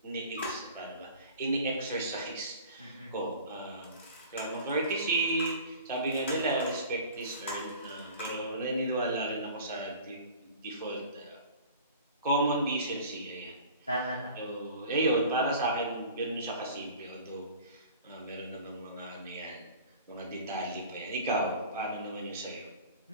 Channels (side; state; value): both; inverted; correlation -0.42